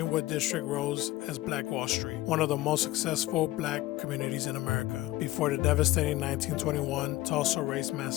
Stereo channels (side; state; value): right; quieter; 17.2 dB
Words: District rose as Black Wall Street, one of the most successful black communities in America, before the devastating 1921 Tulsa Race